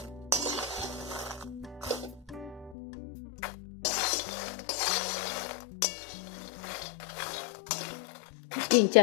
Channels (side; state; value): right; drops out; at 2.8 s